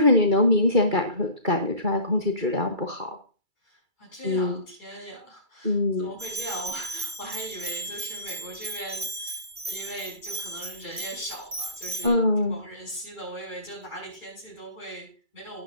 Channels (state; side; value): late; left; 2.3 ms